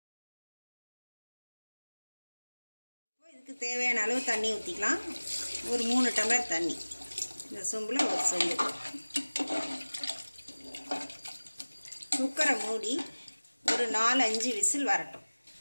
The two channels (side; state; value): both; inverted; correlation -1.00